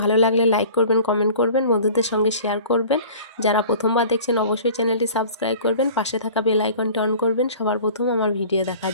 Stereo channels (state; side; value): inverted; both; correlation -0.45